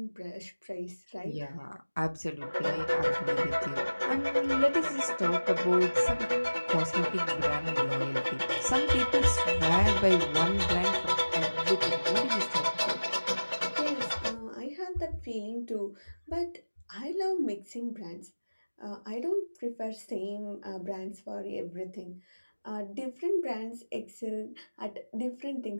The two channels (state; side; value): inverted; both; correlation -1.00